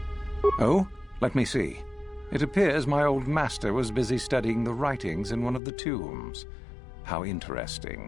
Oh, let me see. It appears my old master was busy studying the writings in one of the tombs. How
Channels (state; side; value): drops out; right; at 5.6 s